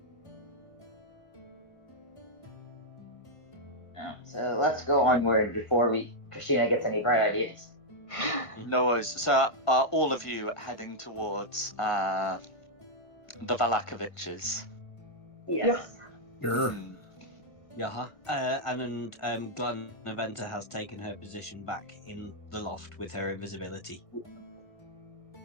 So let's go onward before Christina gets any bright ideas. No worries. So are all of you heading towards the Valakoviches? Yes. Sure. Yeah. And Glenn Aventa has taken her position back in the loft with her invisibility.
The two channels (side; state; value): right; late; 1.6 ms